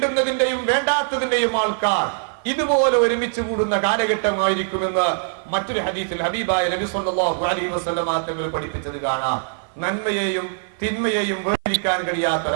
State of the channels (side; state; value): left; silent; 56 dB below the other